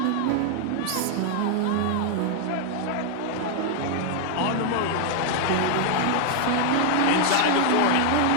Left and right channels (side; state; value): both; different; correlation 0.00